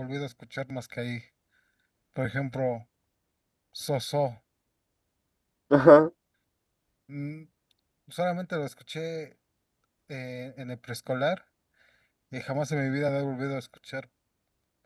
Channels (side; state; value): both; identical; correlation 1.00